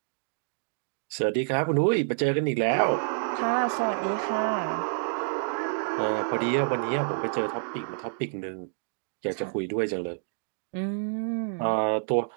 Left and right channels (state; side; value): silent; left; digital silence